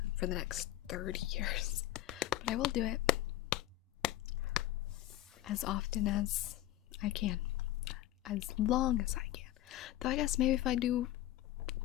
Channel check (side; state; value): right; quieter; 14.5 dB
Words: for the next 30 years. But I will do it as often as I can. As long as I can. Though I guess maybe if I do